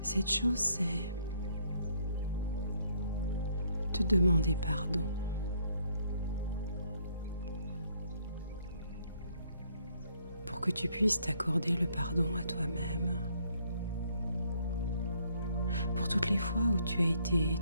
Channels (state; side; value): inverted; both; correlation -0.68